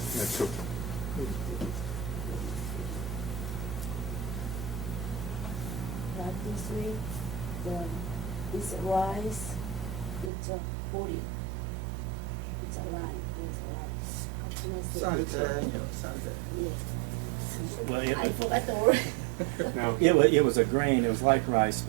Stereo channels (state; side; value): drops out; left; at 10.3 s